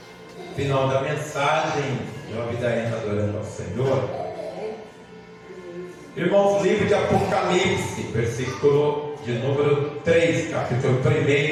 Final da mensagem, Job da Ena adorando ao Senhor. Irmãos, livro de Apocalipse, versículo de número 3, capítulo 1,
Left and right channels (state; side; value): identical; both; correlation 1.00